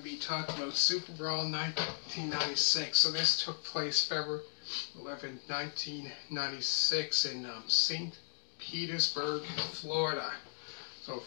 be talking about Superbrawl 1996. So this took place February 11, 1996 in St. Petersburg, Florida. So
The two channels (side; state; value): right; silent; digital silence